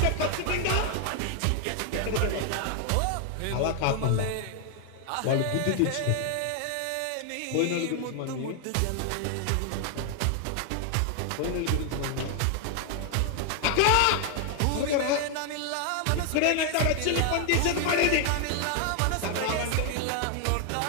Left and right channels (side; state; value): both; different; correlation 0.00